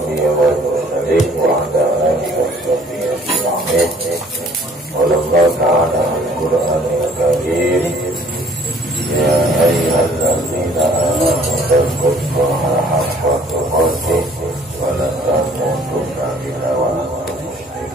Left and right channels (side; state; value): both; normal; correlation 0.56